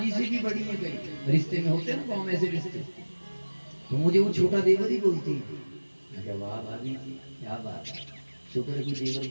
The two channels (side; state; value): both; inverted; correlation -1.00